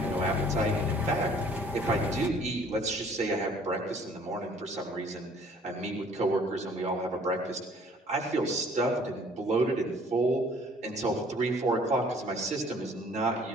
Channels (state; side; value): normal; both; correlation 0.56